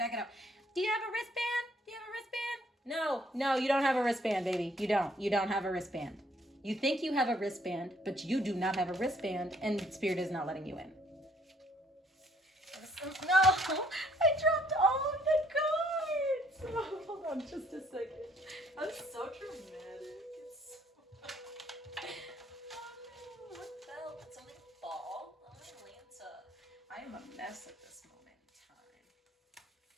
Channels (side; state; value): both; normal; correlation 0.65